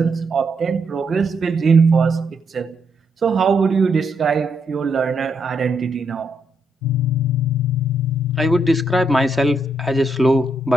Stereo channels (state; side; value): normal; both; correlation 0.77